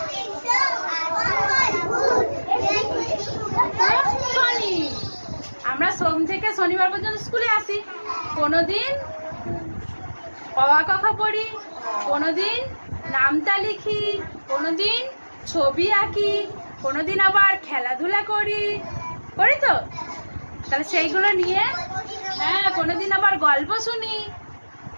শনি। আমরা সোম থেকে শনিবার পর্যন্ত স্কুলে আসি। কোনোদিন অ আ ক খ পড়ি, কোনোদিন নামতা লিখি, কোনোদিন ছবি আঁকি, কোনোদিন আবার খেলাধুলা করি তো। তাহলে সেইগুলো নিয়ে, হ্যাঁ, কোনোদিন আবার গল্প শুনি,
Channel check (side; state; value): both; inverted; correlation -1.00